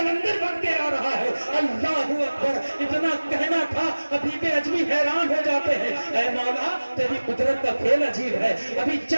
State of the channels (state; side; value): inverted; both; correlation -1.00